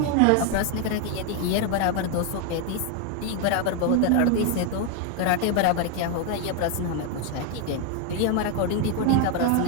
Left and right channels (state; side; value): different; both; correlation 0.01